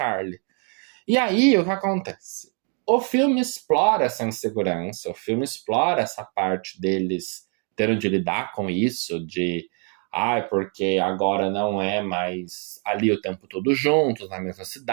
E aí, o que acontece? O filme explora essa insegurança, o filme explora essa parte deles tendo de lidar com isso, de porque agora não é mais ali o tempo todo juntos, na mesma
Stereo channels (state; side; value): quieter; left; 39.6 dB